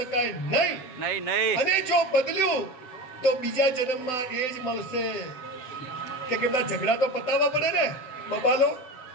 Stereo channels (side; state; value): right; late; 7.9 ms